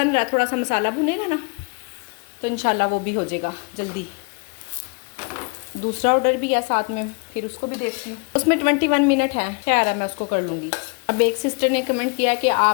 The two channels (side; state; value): right; quieter; 33.3 dB